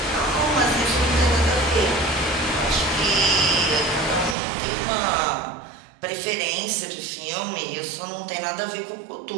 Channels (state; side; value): drops out; left; at 4.4 s